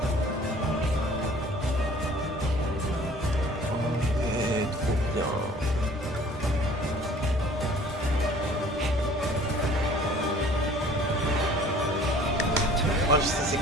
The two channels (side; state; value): both; normal; correlation 0.51